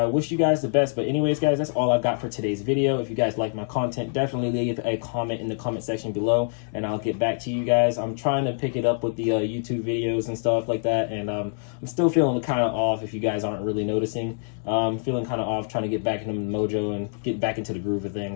wish you guys the best. But anyways, guys, that's all I've got for today's video. If you guys like my content, definitely leave a comment in the comment section below, and I'll get back to you guys. I'm trying to pick it up with the YouTube videos and stuff like that, and I'm still feeling kind of off, if you guys aren't really noticing. Feeling kind of off, trying to get back into the mojo and get back into the groove of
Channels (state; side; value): silent; right; digital silence